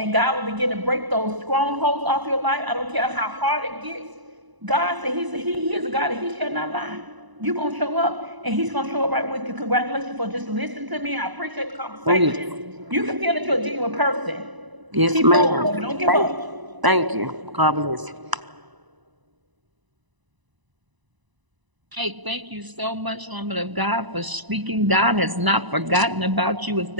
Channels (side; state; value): left; late; 1.0 ms